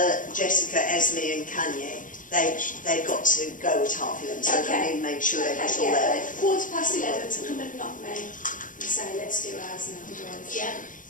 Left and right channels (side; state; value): right; late; 0.38 ms